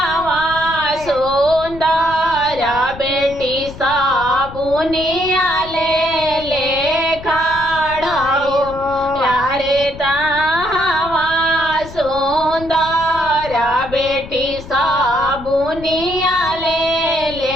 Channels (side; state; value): left; noise; rumble, 15 dB below the sound